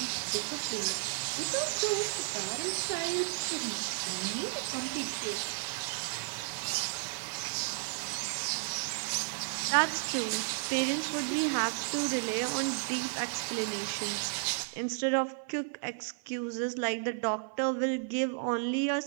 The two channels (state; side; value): silent; left; 56 dB below the other